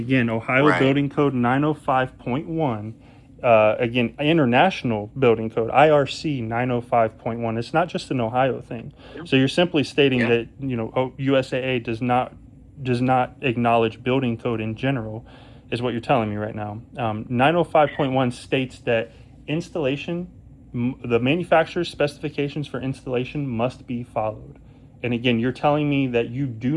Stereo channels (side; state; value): both; identical; correlation 1.00